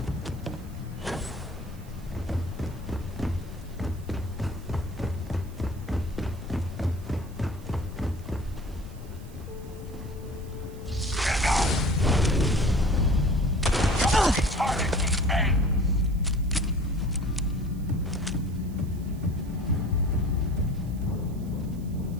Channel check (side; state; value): right; noise; hiss, 25 dB below the sound